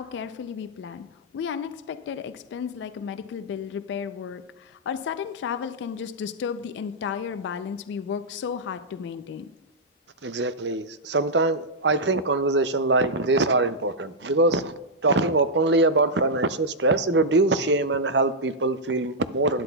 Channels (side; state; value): both; normal; correlation -0.06